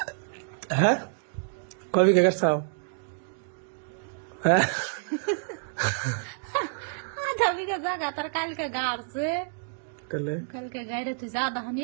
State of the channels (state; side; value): silent; left; digital silence